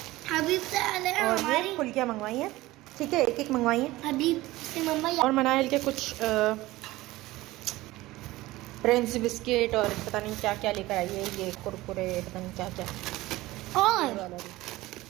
हबीब से और ये फुल्कियाँ मंगवाई हैं, ठीक है, एक एक मंगवाई हैं हबीब से मम्मा। और मनाइल के कुछ प्रिंस बिस्किट और पता नहीं क्या क्या लेकर आई है, ये कुरकुरे पता नहीं क्या क्या। और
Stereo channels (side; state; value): left; quieter; 18.3 dB